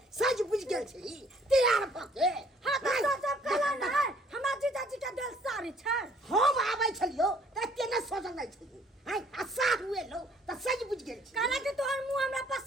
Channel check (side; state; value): both; normal; correlation 0.60